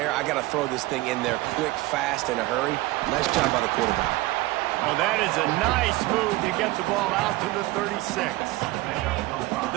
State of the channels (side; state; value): left; quieter; 19.1 dB